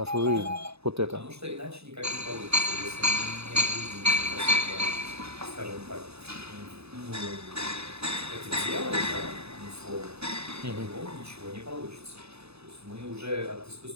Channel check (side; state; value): left; late; 0.79 ms